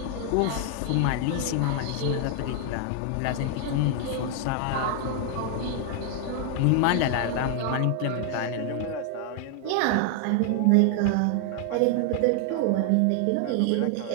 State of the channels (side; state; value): both; different; correlation 0.00